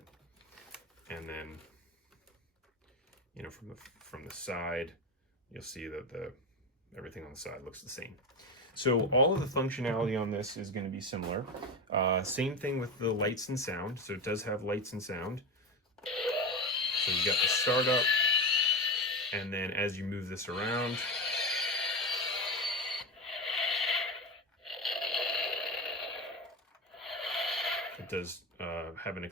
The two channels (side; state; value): both; normal; correlation 0.20